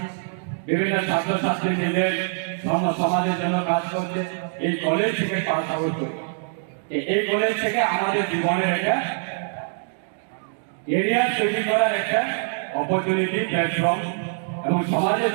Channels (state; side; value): silent; left; digital silence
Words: বিভিন্ন ছাত্রছাত্রী নিজের সমাজের জন্য কাজ করছে এই কলেজ থেকে পাস আউট করে এই কলেজ থেকে আমাদের জীবনের একটা এরিয়া তৈরি করার একটা অপরচুনিটি প্ল্যাটফর্ম এবং সমাজের